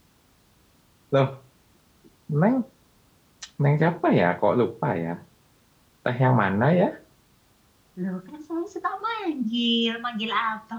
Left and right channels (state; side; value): identical; both; correlation 1.00